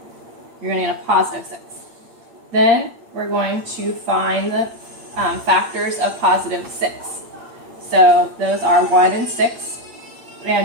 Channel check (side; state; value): left; late; 8.7 ms